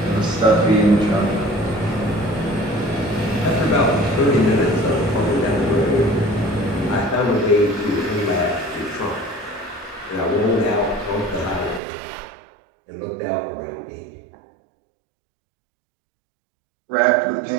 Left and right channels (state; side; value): drops out; left; at 11.8 s